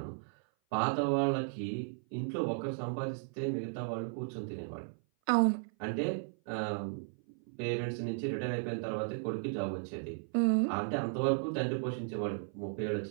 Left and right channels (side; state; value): left; silent; 54 dB below the other